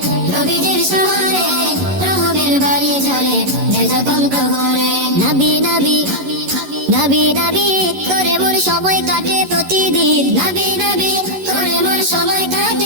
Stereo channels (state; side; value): late; left; 11 ms